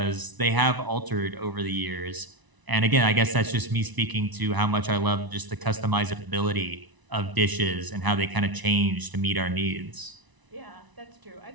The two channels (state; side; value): late; left; 1.0 ms